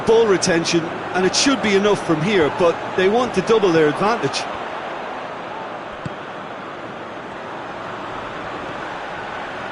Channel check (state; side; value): identical; both; correlation 1.00